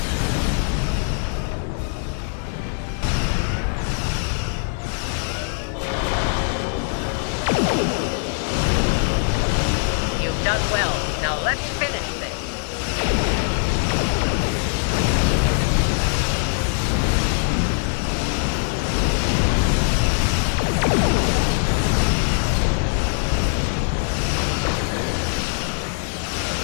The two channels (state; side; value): silent; right; 56 dB below the other